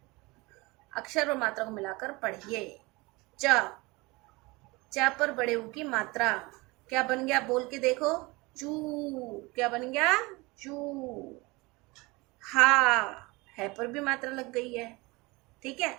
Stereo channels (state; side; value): quieter; left; 24.0 dB